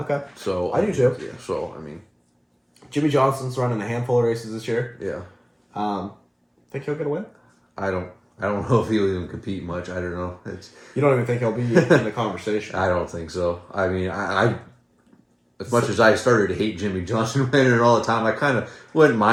So I do too. Yeah. So I mean, Jimmy Johnson's running a handful of races this year. yeah. Think he'll get a win? I don't know if he'll even compete much. I don't know. You don't even think he'll be in the conversation? I don't think so. I mean, I as much as I started to hate Jimmy Johnson winning all the time, I kind of wouldn't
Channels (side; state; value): both; identical; correlation 1.00